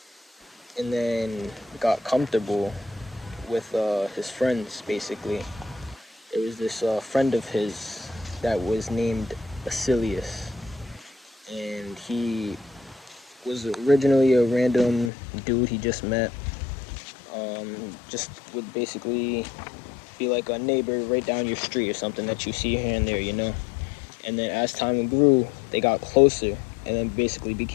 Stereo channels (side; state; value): right; drops out; at 15.1 s